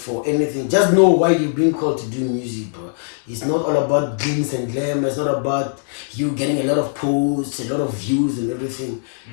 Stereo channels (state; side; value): silent; right; digital silence